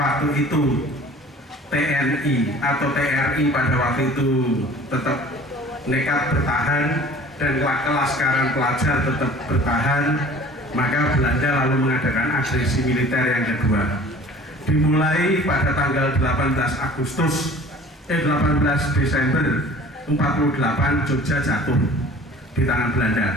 itu TNI atau TRI pada waktu itu tetap nekat bertahan dan kelaskaran pelajar tetap bertahan, maka Belanda lalu mengadakan agresi militer yang kedua. Dimulai pada tanggal 18 Desember 48 Jogja jatuh di tangan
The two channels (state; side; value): normal; both; correlation 0.46